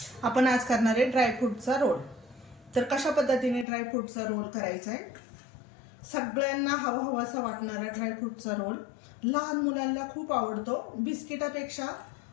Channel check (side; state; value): right; drops out; at 3.7 s